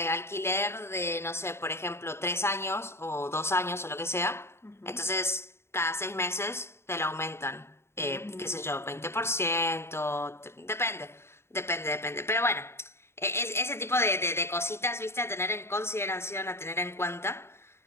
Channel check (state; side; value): late; right; 0.12 ms